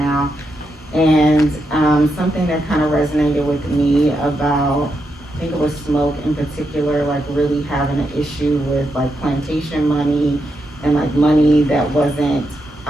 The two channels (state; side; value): normal; both; correlation 0.83